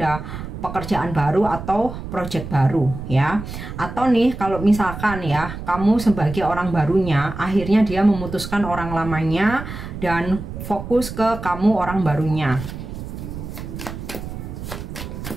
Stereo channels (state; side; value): noise; right; rumble, 9 dB below the sound